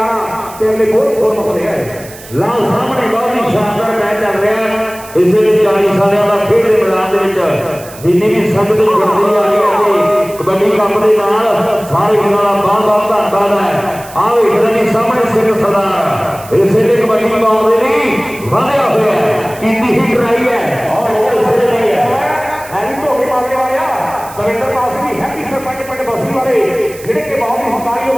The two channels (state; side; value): noise; right; hiss, 18 dB below the sound